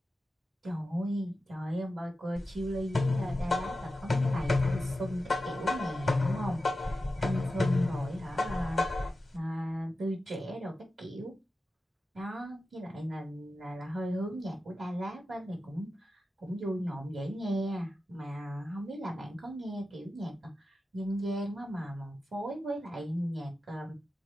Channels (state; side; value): normal; both; correlation 0.92